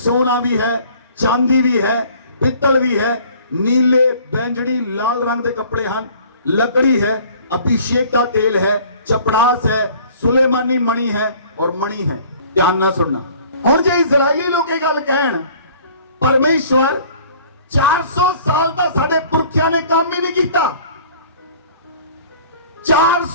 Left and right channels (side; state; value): both; inverted; correlation -0.52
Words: भी है, चांदी भी है, पित्तल भी है, नीले, बैंगनी, लाल रंग के कपड़े हैं, लकड़ी है, अभिषेक का तेल है, चपड़ास है, सुलेमानी मणि है और मणि है। ध्यान ना सुनना। हुण जे इजराइली लोग ये गल कहण परमेश्वर 400 साल दा साडे पुरखियां ने काम ही नहीं कीता,